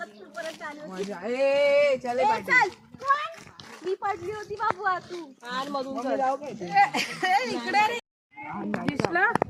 परत आली होती. मजा. ए चले ए, चल मी पडली होती बाबू तू आणि मधून इकडे रे. दिसला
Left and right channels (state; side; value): identical; both; correlation 1.00